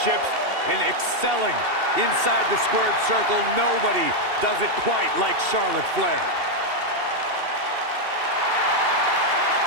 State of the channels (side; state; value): left; late; 2.7 ms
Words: and excelling inside the squared circle, nobody does it quite like Charlotte Flair.